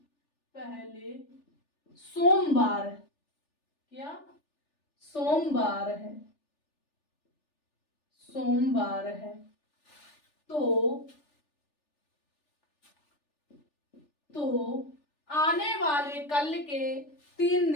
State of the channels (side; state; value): right; late; 3.4 ms